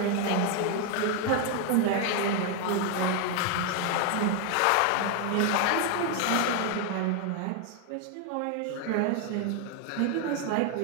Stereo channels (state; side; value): different; both; correlation 0.01